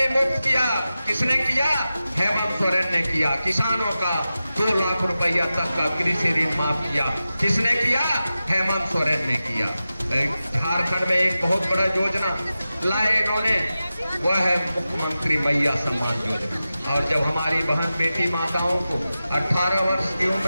मुफ्त किया, किसने किया? हेमंत सोरेन ने किया। किसानों का 2 लाख रुपया तक का कृषि ऋण माफ किया, किसने किया? हेमंत सोरेन ने किया। झारखंड में एक बहुत बड़ा योजना लाए इन्होंने, वह है मुख्यमंत्री मैया सम्मान योजना। और जब हमारी बहन बेटी माताओं को 18 वर्ष की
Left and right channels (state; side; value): inverted; both; correlation -0.94